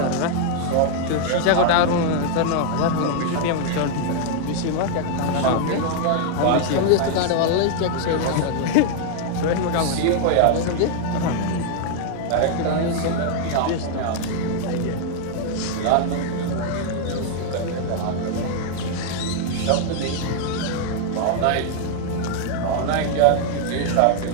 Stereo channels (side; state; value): both; different; correlation 0.00